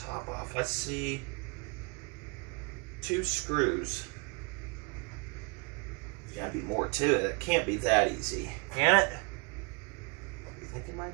top off? Let's see. 2 screws. There's gotta be more to it. It can't be that easy. Can it? You think it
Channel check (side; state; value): left; quieter; 33.4 dB